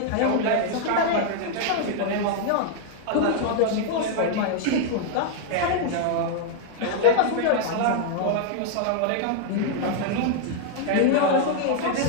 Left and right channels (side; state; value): both; different; correlation 0.00